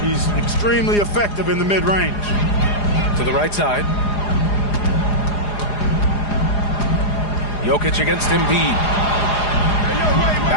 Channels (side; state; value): right; late; 4.9 ms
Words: extremely effective in the mid-range. To the right side. Jokic against Embiid.